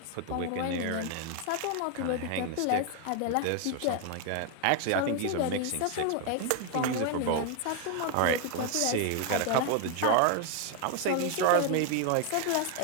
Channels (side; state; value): both; different; correlation 0.00